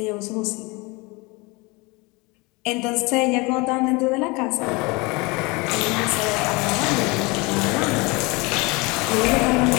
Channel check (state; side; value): quieter; right; 26.0 dB